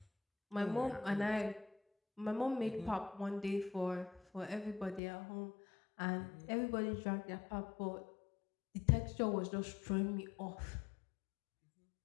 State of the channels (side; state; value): right; drops out; at 5.0 s